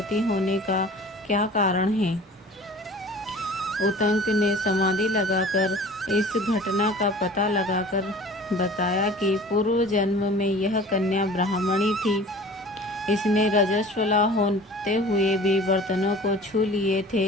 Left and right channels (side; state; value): both; normal; correlation 0.43